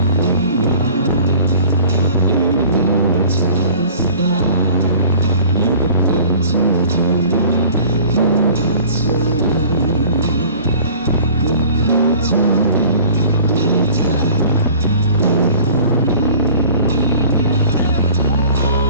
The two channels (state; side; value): inverted; both; correlation -0.47